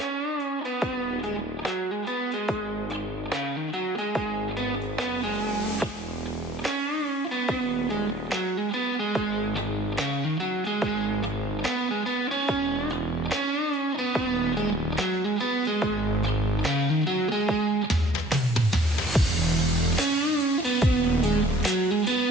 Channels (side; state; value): both; normal; correlation 0.54